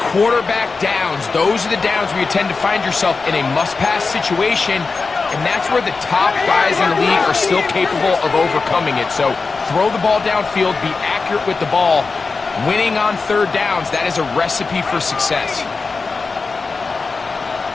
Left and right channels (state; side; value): quieter; right; 4.3 dB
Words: quarterback downs. Those are the downs where you tend to find yourself in a must-pass situation, and that's where the top guys in the league are still capable of overcoming it. So throw the ball downfield, be accurate with the ball. Winning on 3rd downs, that is a recipe for success.